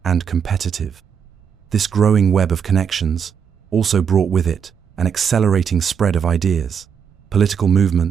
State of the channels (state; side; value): quieter; left; 7.3 dB